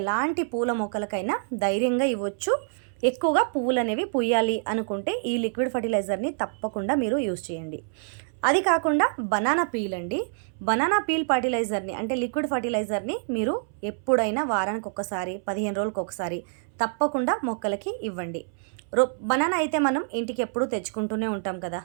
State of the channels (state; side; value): silent; left; 61 dB below the other